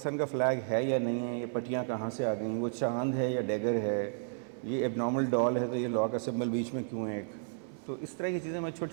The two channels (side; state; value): left; silent; 56 dB below the other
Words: کا فلیگ ہے یا نہیں ہے, یہ پٹیاں کہاں سے آ گئیں, وہ چاند ہے یا ڈیگر ہے, یہ ایب نارمل ڈال ہے تو یہ لا کا سمبل بیچ میں کیوں ہے. تو اس طرح کی چیزیں میں